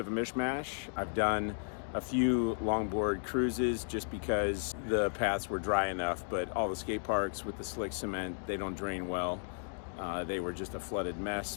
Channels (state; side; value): silent; right; digital silence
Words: a mishmash. I've done a few longboard cruises just because the paths were dry enough, but all the skate parks with the slick cement, they don't drain well. They were just a flooded